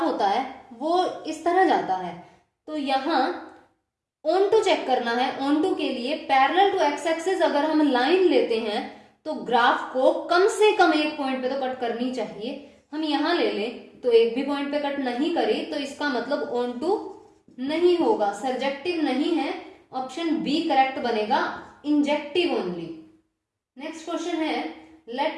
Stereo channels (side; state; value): both; identical; correlation 1.00